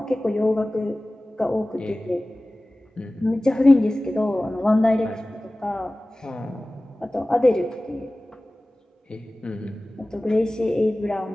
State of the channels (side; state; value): both; normal; correlation 0.97